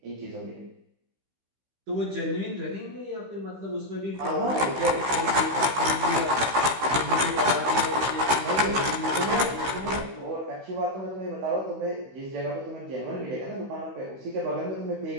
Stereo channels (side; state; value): left; late; 15 ms